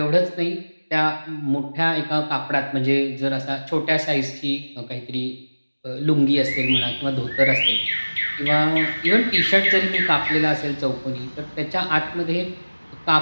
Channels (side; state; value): both; inverted; correlation -1.00